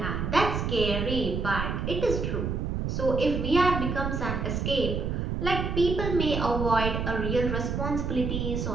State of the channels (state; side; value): noise; right; rumble, 2 dB below the sound